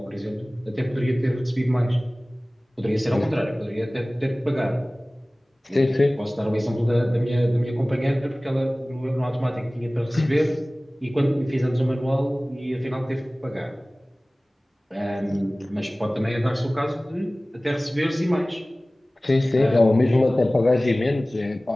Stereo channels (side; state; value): both; normal; correlation 0.98